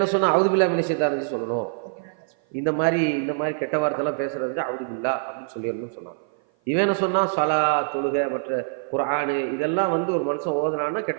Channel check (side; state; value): left; silent; 55 dB below the other